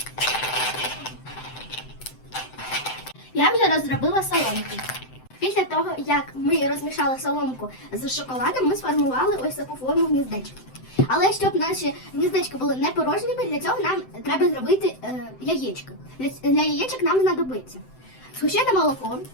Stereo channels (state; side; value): late; right; 7.8 ms